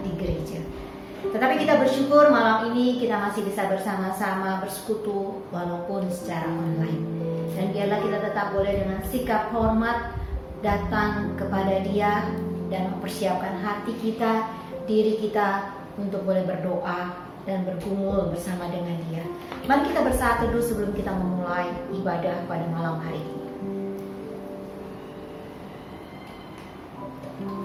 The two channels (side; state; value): both; identical; correlation 1.00